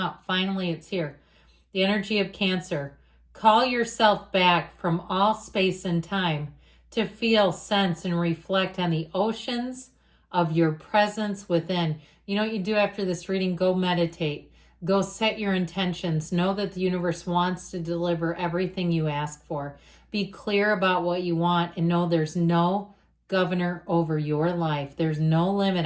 Finally, it's here. The energy of Cancer. Call yourself back from all space and time to feel, sense, and reflect on the oceans of your presence within. You know what you do after this reading? Go meditate. Go set your intentions. Know that the universe wants to deliver everything you ask for. Be clear about what you want and know there's no governor over your life. There's no limit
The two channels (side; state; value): both; identical; correlation 1.00